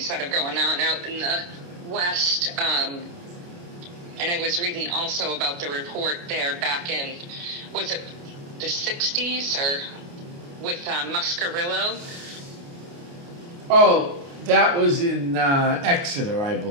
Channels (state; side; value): late; left; 29 ms